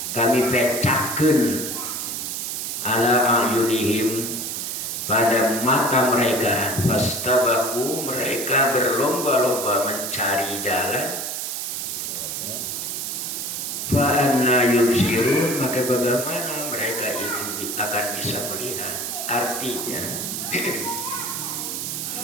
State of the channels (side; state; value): right; noise; hiss, 4 dB below the sound